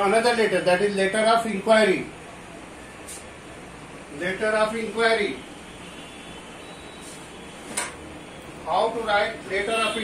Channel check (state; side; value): identical; both; correlation 1.00